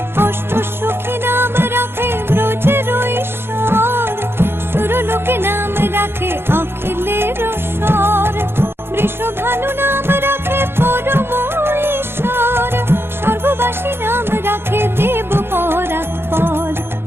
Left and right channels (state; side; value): late; left; 0.11 ms